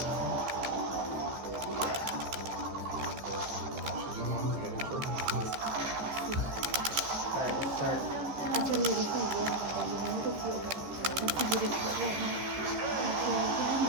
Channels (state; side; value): late; left; 14 ms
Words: Alright, let's start.